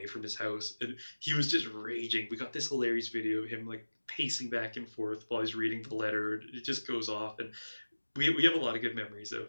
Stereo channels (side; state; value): both; inverted; correlation -1.00